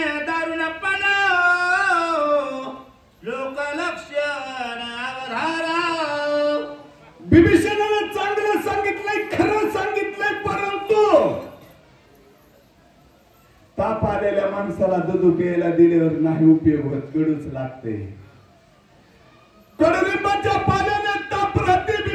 दारुणपण लोकलक्षण अवधारा विभीषणाने चांगलं सांगितलंय खरं सांगितलंय परंतु ताप आलेल्या माणसाला दूध प्यायला दिल्यावर नाही उपयोग होत कडूच लागते कडुलिंबाच्या पाल्याने ताप राहते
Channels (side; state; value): both; identical; correlation 1.00